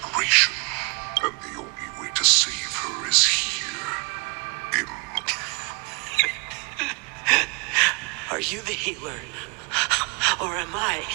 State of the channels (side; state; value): left; quieter; 30.2 dB